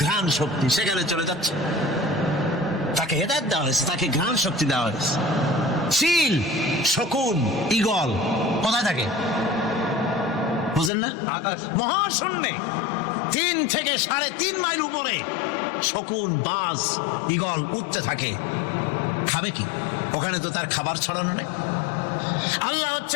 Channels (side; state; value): right; drops out; at 10.9 s